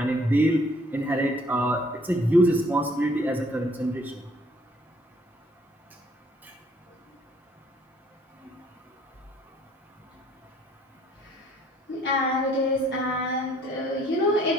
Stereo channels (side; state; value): both; normal; correlation 0.61